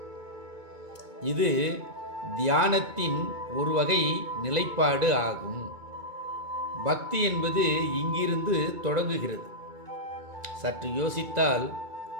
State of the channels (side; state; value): left; late; 2.2 ms